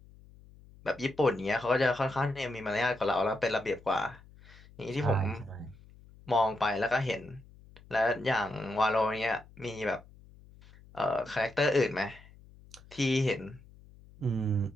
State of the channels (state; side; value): noise; left; hum, 23 dB below the sound